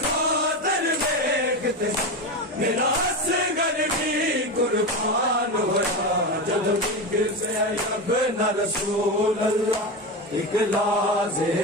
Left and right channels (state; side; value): normal; both; correlation 0.19